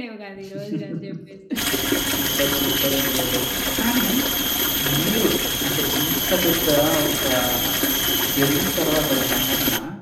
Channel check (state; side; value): identical; both; correlation 1.00